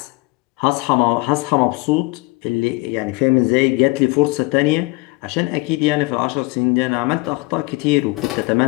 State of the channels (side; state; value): right; quieter; 24.8 dB